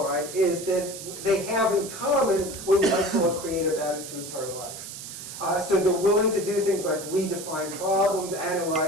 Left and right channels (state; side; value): noise; right; hiss, 11 dB below the sound